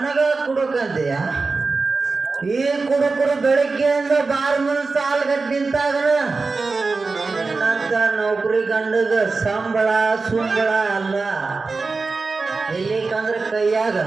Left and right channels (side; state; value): left; quieter; 4.0 dB